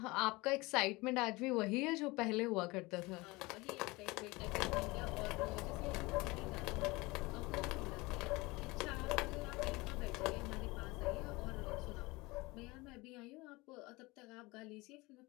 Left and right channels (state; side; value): quieter; right; 23.0 dB